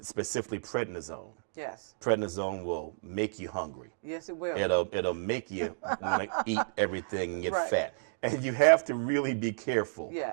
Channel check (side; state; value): left; silent; digital silence